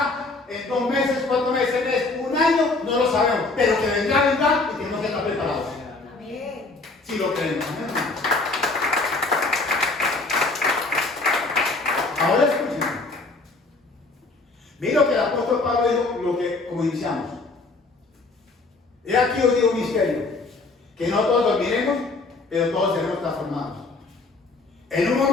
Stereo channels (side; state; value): right; quieter; 3.5 dB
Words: En 2 meses, 4 meses, 1 año, no lo sabemos. Pero que vendrá y tenemos que estar preparados. Amén. Si lo creemos. Ahora escuchen. Mira lo que el apóstol Pablo dijo, como iniciamos. He aquí os digo un misterio, que no todos dormiremos, pero todos seremos transformados. En un